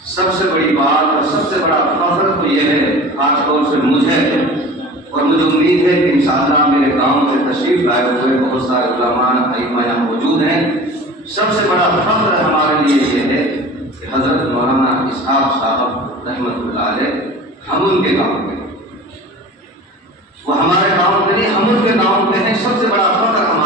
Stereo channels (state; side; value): normal; both; correlation 0.39